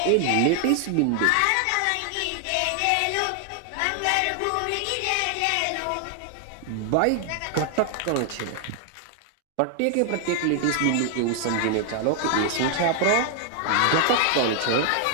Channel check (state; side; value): different; both; correlation 0.00